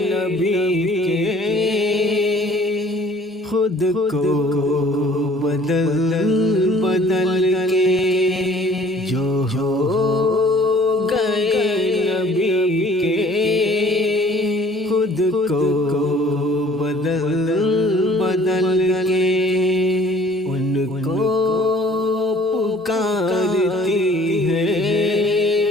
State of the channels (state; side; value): normal; both; correlation 0.54